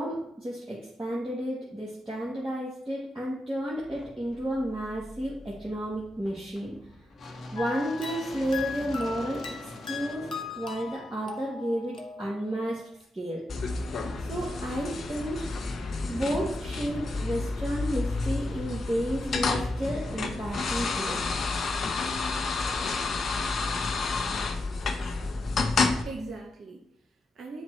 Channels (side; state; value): both; normal; correlation 0.86